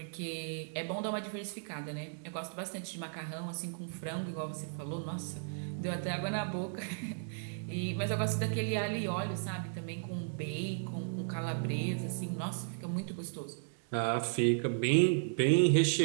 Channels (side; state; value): left; silent; digital silence